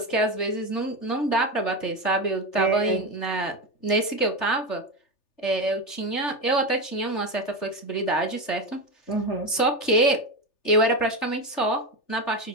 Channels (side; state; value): right; late; 3.3 ms